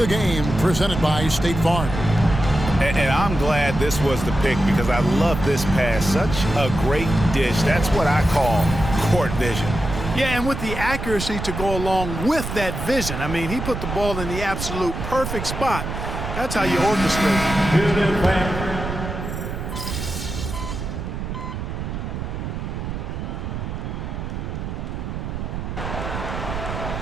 game presented by State Farm. And I'm glad this was the pick because I love this pass. Such a great dish. That's what I call court vision. Yeah, and with the accuracy to go along with that vision. I mean, he put the ball in the absolute perfect spot. That's how you orchestrate.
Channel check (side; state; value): right; noise; rumble, 5 dB below the sound